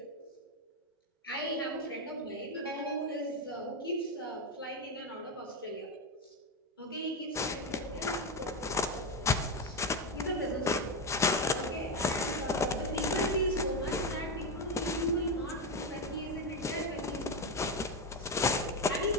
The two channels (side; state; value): both; normal; correlation 0.11